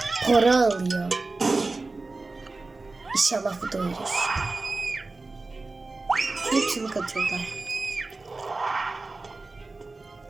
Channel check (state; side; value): quieter; left; 3.5 dB